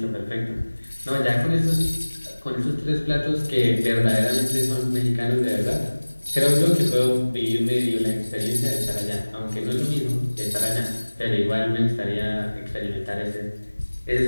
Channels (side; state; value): both; inverted; correlation -1.00